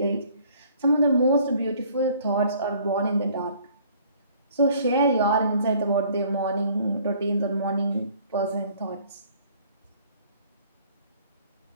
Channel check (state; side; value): inverted; both; correlation -0.57